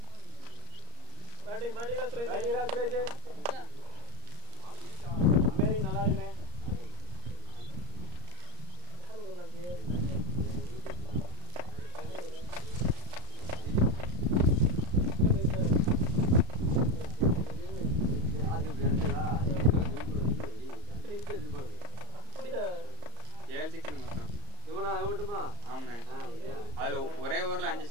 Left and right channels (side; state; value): left; late; 34 ms